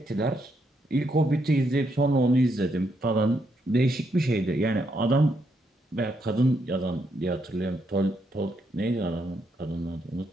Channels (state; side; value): normal; both; correlation 0.77